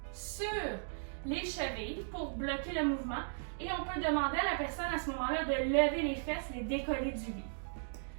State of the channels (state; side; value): silent; left; digital silence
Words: sur les chevilles pour bloquer le mouvement. Et on peut demander à la personne à ce moment-là de lever les fesses, les décoller du lit.